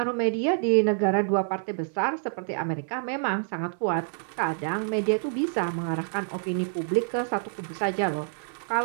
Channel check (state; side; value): silent; left; digital silence